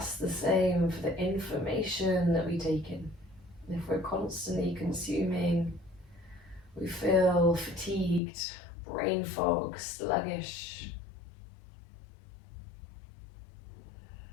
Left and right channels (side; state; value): right; drops out; at 8.2 s